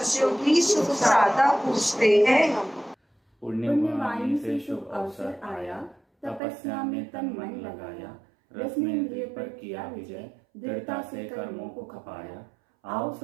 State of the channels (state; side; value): drops out; left; at 6.4 s